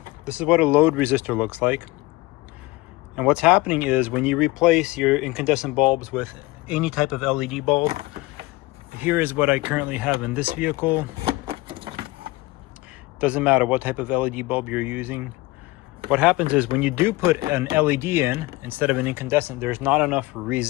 this is what a load resistor looks like. And what's happening is when you replace your incandescent bulbs with any type of LED bulb, here is what I currently have in this vehicle. Doesn't matter what type of LED bulb you're using. What happens is when you do put an LED in instead of an incandescent, there's not enough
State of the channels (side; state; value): right; quieter; 20.7 dB